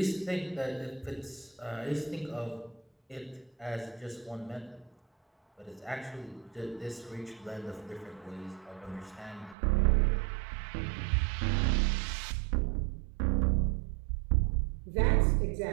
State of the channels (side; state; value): left; drops out; at 9.6 s